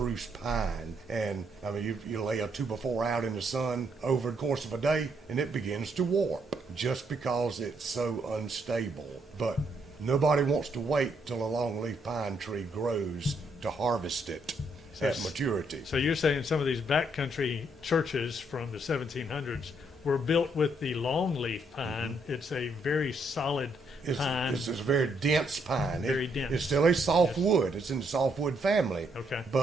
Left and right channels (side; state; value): both; normal; correlation 0.73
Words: pine. And I mean, you lay a 2x4 out in the sun over the course of a day, and it begins to warp just because it's so unstable. But nobody wants to wait till a longleaf pine tree grows to harvest it at maturity. So you're saying some of these backcountry churches from the 1700s were built with the longleaf pine. It's a very solid pine. It's a very dense pine. Very dense. It's still a softwood. It's in the softwood family. Okay.